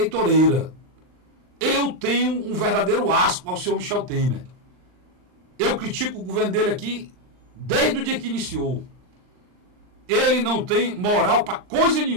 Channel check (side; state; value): left; late; 39 ms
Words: Eu tenho um verdadeiro asco ao senhor Michel Temer. Eu critico o governo dele aqui desde o dia que iniciou. Ele não tem moral para coisa